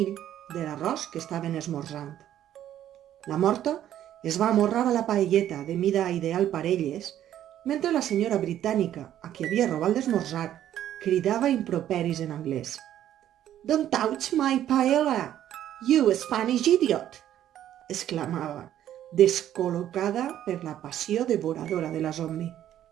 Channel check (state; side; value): quieter; left; 11.5 dB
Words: de l'arròs que estaven esmorzant. La morta es va amorrar a la paelleta de mida ideal per elles, mentre la senyora britànica, a qui havia robat l'esmorzar, cridava improperis en anglès. «Don't touch my paella, you Spanish idiot!» exclamava, descol·locada per la passió devoradora de la zombi.